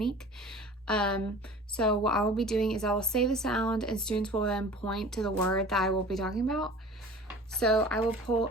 So what I will be doing is I will say the sound and students will then point to the word that I will be talking about. So I will pull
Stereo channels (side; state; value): both; normal; correlation 0.42